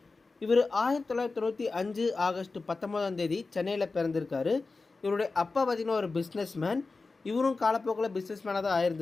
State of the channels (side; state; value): right; quieter; 3.9 dB